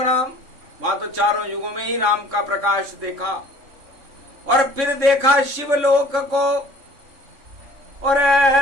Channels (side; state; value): left; late; 3.6 ms